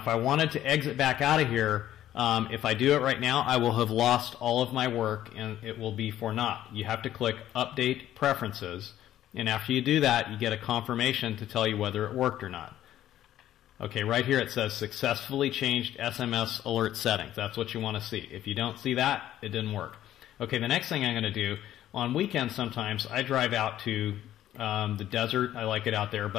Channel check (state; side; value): quieter; right; 12.5 dB